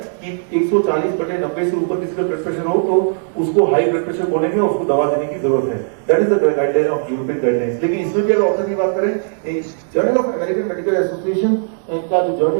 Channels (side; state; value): left; silent; digital silence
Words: कि 140/90 से ऊपर किसी का ब्लड प्रेशर हो तो उसको हाई ब्लड प्रेशर बोलेंगे और उसको दवा देने की जरूरत है। That is the guideline of European guidelines. लेकिन इसमें भी अगर ऑथर की बात करें, journal of American medical association का जो